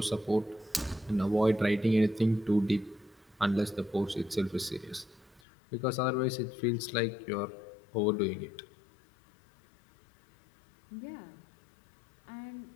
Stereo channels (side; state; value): right; drops out; at 5.4 s